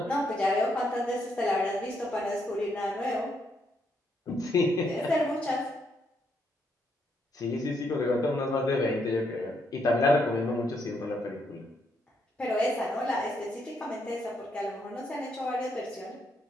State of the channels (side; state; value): both; normal; correlation 0.76